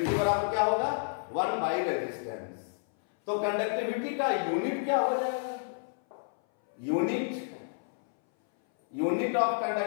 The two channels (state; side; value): silent; right; 58 dB below the other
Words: बराबर क्या होगा? 1 बाई रेजिस्टेंस। तो कंडक्टिविटी का यूनिट क्या हो जाएगा? यूनिट ऑफ